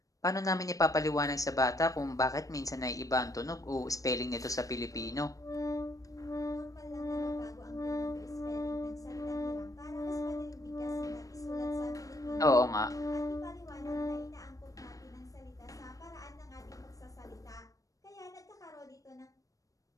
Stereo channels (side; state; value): right; late; 0.16 ms